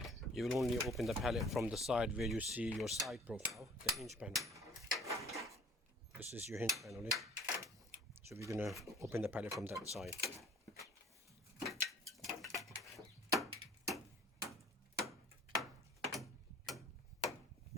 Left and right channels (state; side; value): normal; both; correlation 0.52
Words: You will only open the pallet from the side where you see your side profile, the hinge panel. This is your hinge panel. So we're going to open the pallet from that side.